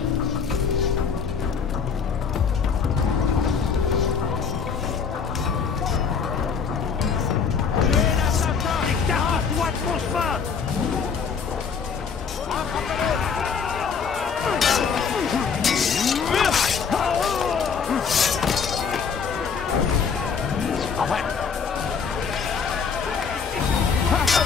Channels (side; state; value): right; quieter; 6.1 dB